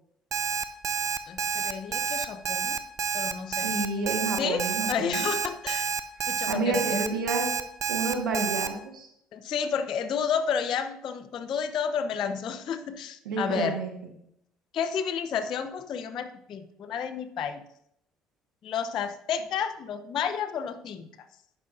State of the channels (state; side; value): normal; both; correlation 0.43